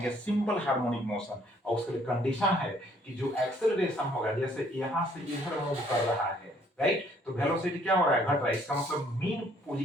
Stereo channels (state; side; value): normal; both; correlation 0.63